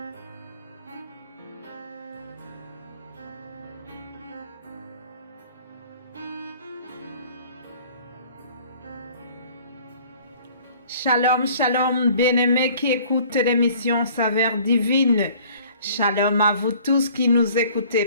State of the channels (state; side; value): inverted; both; correlation -0.53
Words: Shalom, shalom, bien-aimés qui écoutent l'émission Saveurs divines. Shalom à vous tous qui nous écoutez